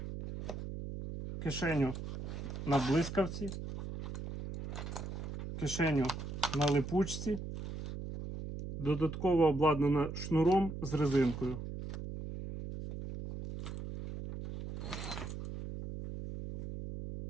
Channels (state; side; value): noise; right; hum, 7 dB below the sound